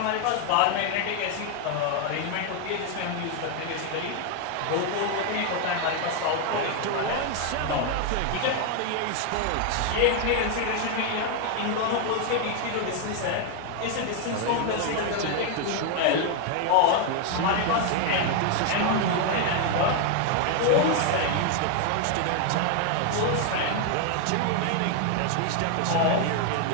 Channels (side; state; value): both; different; correlation 0.01